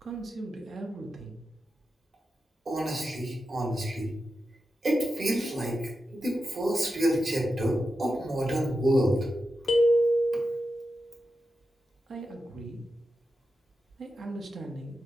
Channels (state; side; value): normal; both; correlation 0.90